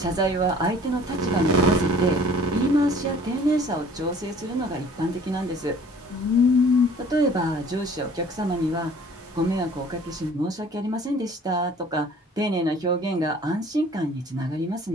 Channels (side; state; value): both; normal; correlation 0.52